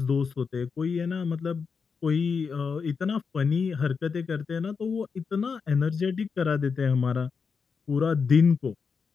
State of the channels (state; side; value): quieter; right; 5.6 dB